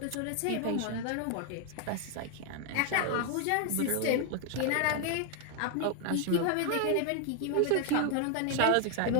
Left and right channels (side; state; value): both; different; correlation 0.00